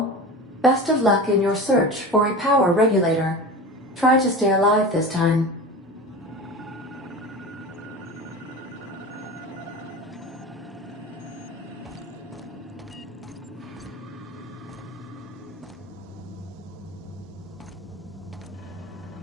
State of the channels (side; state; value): both; normal; correlation 0.31